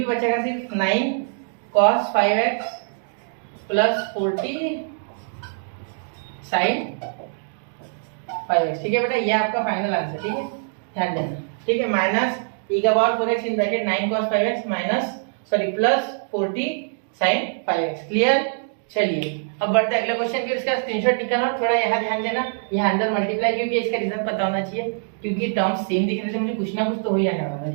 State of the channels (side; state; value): left; silent; digital silence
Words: बचेगा, सिर्फ 9 cos 5x plus 40 sine 5x, ठीक है बेटा। ये आपका फाइनल आंसर, ठीक है, ध्यान देना, ठीक है। माइनस e का power 4x in bracket 9 cos 5x minus plus 40 sine 5x। Clear? चलिए अब बढ़ते अगले क्वेश्चन के, इसका स्क्रीनशॉट निकालना और थोड़ा यहाँ ध्यान देना, यहाँ अंदर मल्टीप्लाई, क्योंकि इसका रीजन पता होना चाहिए, क्योंकि टर्म्स सेम दिख रहे थे, मुझे कुछ ना कुछ तो हो ही जाने वाला था,